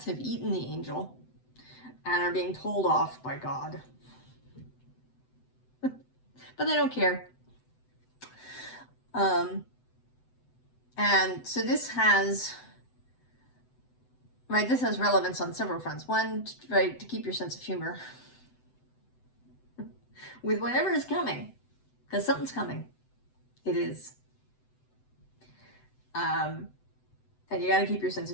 have eaten the angel and are being told off by God. But they don't care. And so this has, right, this has relevance on several fronts. One, right, to keep your sense of humor with whatever is coming, because something's coming. It is. And you got to keep your sense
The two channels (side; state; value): right; late; 7.9 ms